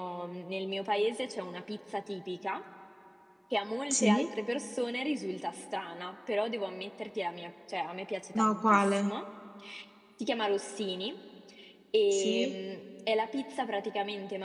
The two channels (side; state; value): both; identical; correlation 1.00